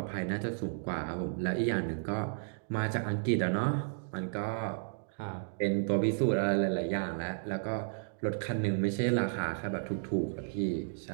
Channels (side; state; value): left; silent; digital silence